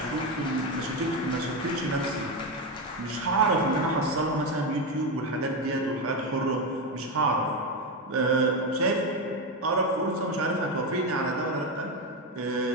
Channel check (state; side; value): normal; both; correlation 0.11